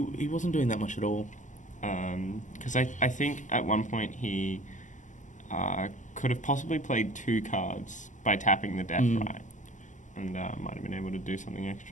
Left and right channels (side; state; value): right; late; 0.37 ms